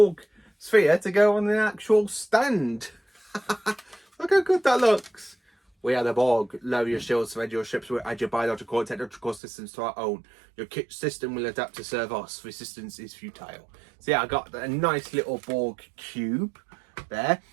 Sphere to go on the actual stand. Look how good that looks. We are the Borg. Lower your shields, surrender your ships, we'll add your biological and technological systems to our own. Your kit system will adapt to serve us. Resistance is futile. So yeah, I got a nice little Borg cube there.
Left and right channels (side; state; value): left; drops out; at 9.4 s